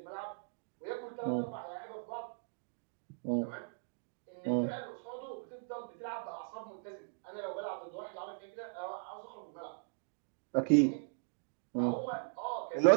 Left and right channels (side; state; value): left; silent; digital silence